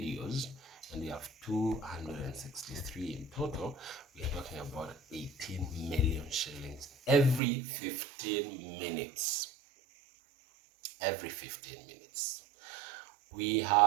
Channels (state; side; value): drops out; left; at 7.4 s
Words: and we have 263 in total. We are talking about 18 million shillings every 15 minutes. Every 15 minutes. We